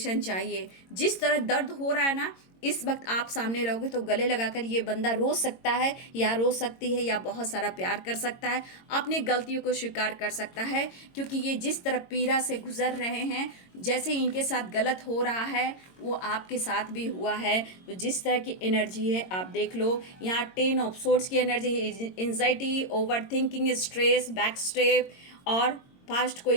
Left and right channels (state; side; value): late; right; 22 ms